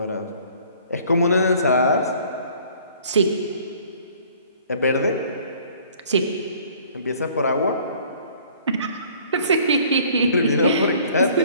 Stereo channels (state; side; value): inverted; both; correlation -0.55